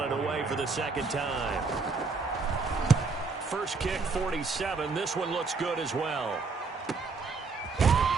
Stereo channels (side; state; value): left; quieter; 4.4 dB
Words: it away for the 2nd time. First kick, 47. This one looks good as well.